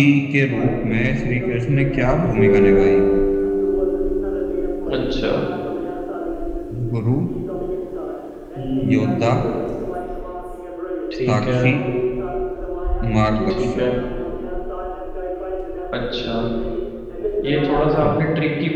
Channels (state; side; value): identical; both; correlation 1.00